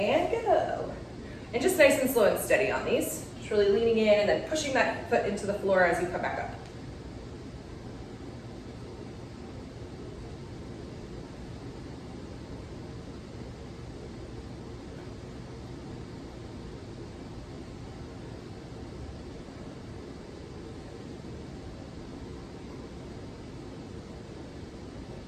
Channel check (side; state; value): both; identical; correlation 1.00